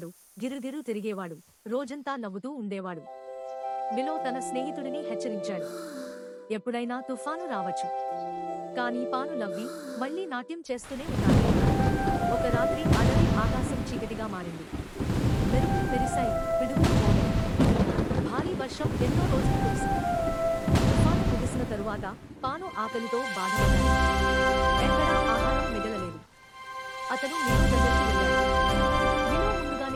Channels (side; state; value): both; identical; correlation 1.00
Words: గిరుగిరు తిరిగేవాడు, రోజంతా నవ్వుతూ ఉండేవాడు. మిలో తన స్నేహితుడిని హెచ్చరించాడు, ఎప్పుడైనా తుఫాను రావచ్చు. కానీ పాను నవ్వి మళ్లీ నాట్యం చేస్తూనే ఉన్నాడు. ఒక రాత్రి అడవి ఆకాశం చీకటిగా మారింది. మెరుపులు మెరిశాయి, పిడుగులు మోగాయి. భారీ వర్షం ఎన్నో రోజులు కురిసింది. తుఫాను ముగిసిన తరువాత పాను ఆకలితో బాధపడ్డాడు. ఎక్కడా ఆహారం మిగలలేదు. అతను మిలో దగ్గరికి వెళ్ళాడు. మిలో